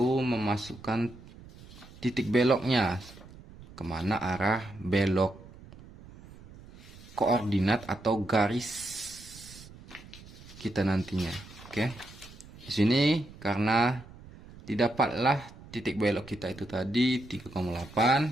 memasukkan titik beloknya. Kemana arah belok koordinat atau garis kita nantinya. Oke. Di sini karena didapatlah titik belok kita itu tadi 3,8,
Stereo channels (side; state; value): right; noise; rumble, 19 dB below the sound